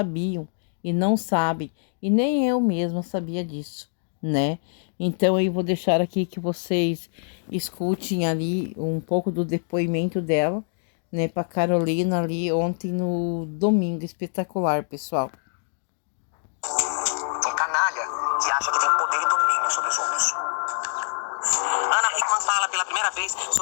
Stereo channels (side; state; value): right; silent; digital silence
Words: e não sabem, e nem eu mesma sabia disso, né? Então eu vou deixar aqui que vocês escutem ali um pouco do depoimento dela, né, para Carolina ali ontem no Domingo Espetacular, pessoal. Um canalha que acha que tem poder e domínio sobre os outros. Ana Hickman fala pela primeira vez